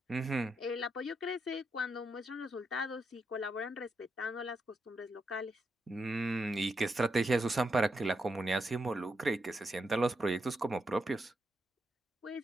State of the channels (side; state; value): both; normal; correlation 0.83